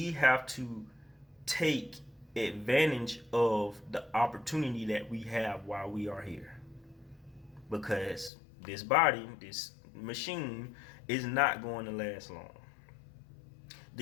have to take advantage of the opportunity that we have while we are here, because this body, this machine, is not going to last long.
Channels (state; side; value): drops out; right; at 8.3 s